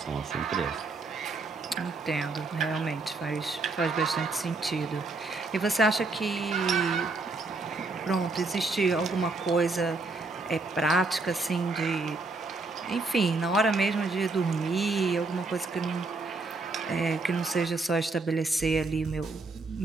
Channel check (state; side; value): quieter; left; 3.5 dB